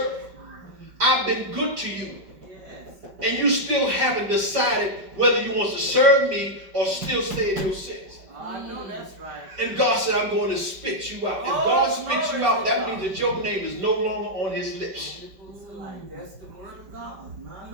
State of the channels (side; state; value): left; late; 5.3 ms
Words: I've been good to you. Yes. And you still haven't decided whether you want to serve me or still stay in your sins. I know that's right. And God said, I'm going to spit you out. If God spits you out, that means that your name is no longer on his lips. That's the word of God, my